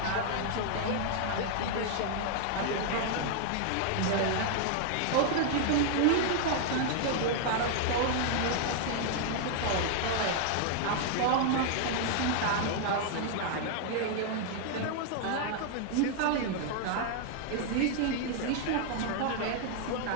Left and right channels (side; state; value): both; different; correlation 0.00